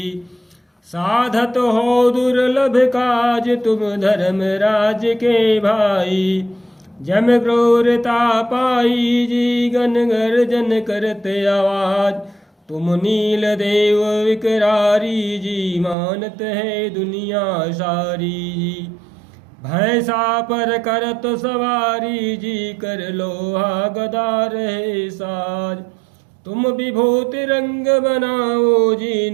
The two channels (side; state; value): left; drops out; at 16.0 s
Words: साधत हो दुर्लभ काज, तुम धर्म राज के भाई, जम क्रूरता पाई जी, गन गर्जन करते आवाज, तुम नील देव विकरारी जी, मानत है दुनिया सारी जी। भैंसा पर करत सवारी जी, कर लोहा गदा रहे साज, तुम विभूति रंग बनाओ जी,